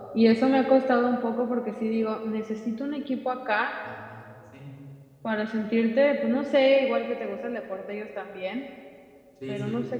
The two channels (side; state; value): both; identical; correlation 1.00